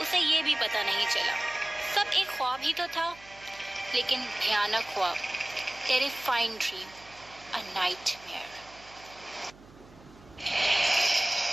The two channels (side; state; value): right; noise; hum, 23 dB below the sound